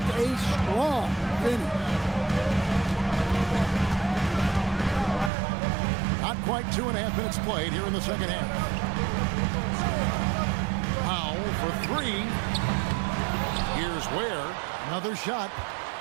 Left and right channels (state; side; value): drops out; left; at 5.3 s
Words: a strong finish. Not quite 2.5 minutes played here in the second half. Powell for 3. Here's Ware. Another shot.